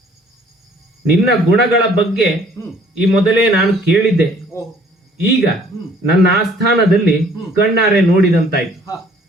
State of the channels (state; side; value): normal; both; correlation 0.58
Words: ನಿನ್ನ ಗುಣಗಳ ಬಗ್ಗೆ ಈ ಮೊದಲೇ ನಾನು ಕೇಳಿದ್ದೆ. ಈಗ ನನ್ನ ಆಸ್ಥಾನದಲ್ಲಿ ಕಣ್ಣಾರೆ ನೋಡಿದಂತಾಯ್ತು.